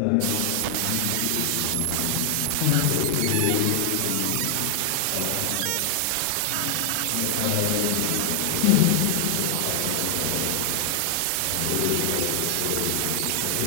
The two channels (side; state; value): both; different; correlation 0.00